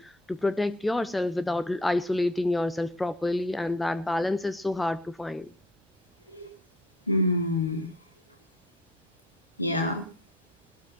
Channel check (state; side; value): normal; both; correlation 0.52